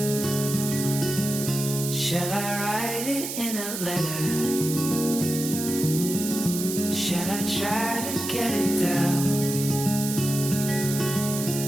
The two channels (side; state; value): right; noise; hiss, 5 dB below the sound